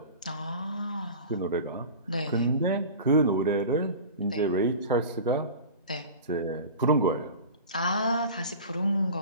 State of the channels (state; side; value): inverted; both; correlation -0.36